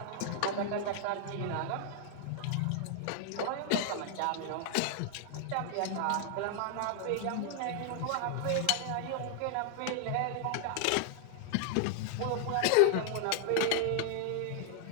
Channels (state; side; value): different; both; correlation 0.00